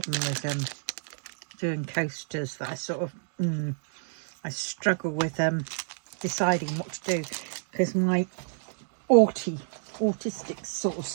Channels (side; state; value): left; silent; digital silence